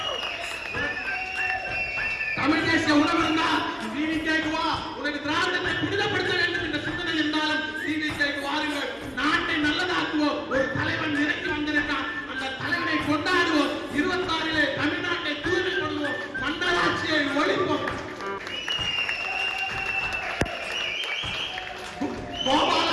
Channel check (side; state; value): both; identical; correlation 1.00